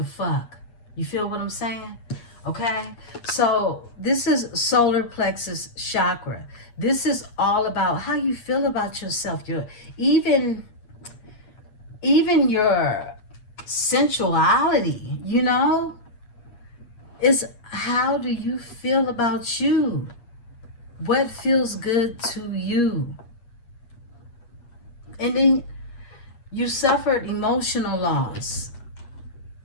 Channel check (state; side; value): late; right; 8.5 ms